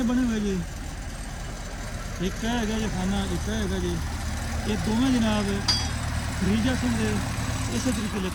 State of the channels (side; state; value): both; identical; correlation 1.00